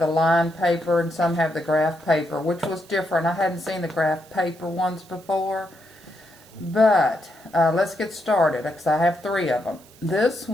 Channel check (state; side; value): noise; right; hiss, 26 dB below the sound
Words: lined paper and some have the graph paper, which was different. I hadn't seen the graph paper ones before. But let's get started because I have 3 of them. This